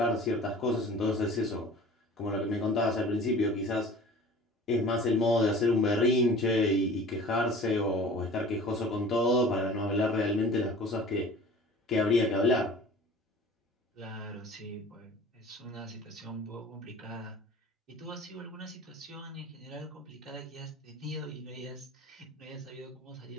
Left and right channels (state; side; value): normal; both; correlation 0.43